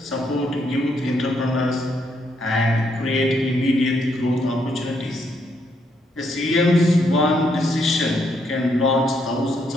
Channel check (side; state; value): both; normal; correlation 0.75